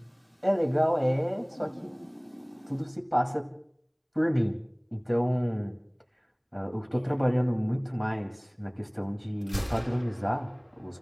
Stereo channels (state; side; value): identical; both; correlation 1.00